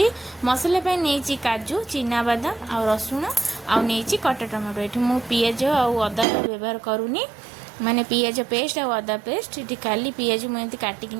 मसला पे नहीं काजू चिना बादाम आ रसुण आ नहीं कटा टमाटो। ये मु पियाज आउ अदा व्यवहार करूनी माने पियाज पेस्ट आ अदा पेस्ट। ये खाली पियाज मुझे काटिक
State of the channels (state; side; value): drops out; left; at 6.2 s